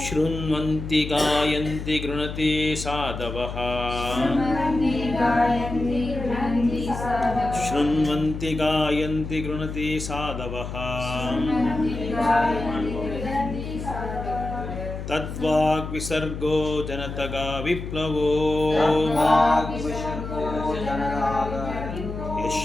शृण्वन्ति गायन्ति गृणन्ति साधवः शृण्वन्ति गायन्ति गृणन्ति साधवः तद्वाक् विसर्गो जनतगा विप्लवो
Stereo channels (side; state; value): left; noise; hum, 7 dB below the sound